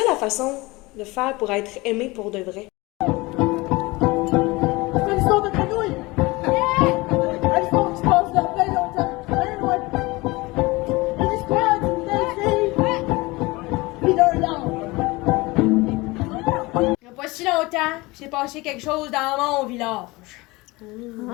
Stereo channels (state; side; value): quieter; right; 22.6 dB